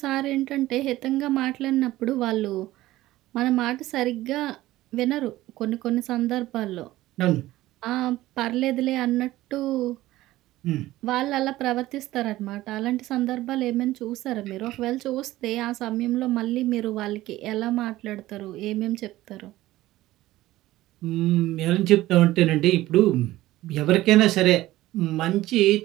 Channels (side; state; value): left; quieter; 16.4 dB